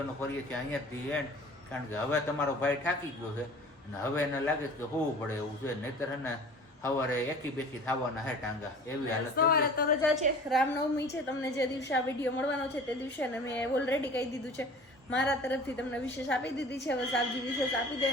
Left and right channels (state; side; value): normal; both; correlation 0.43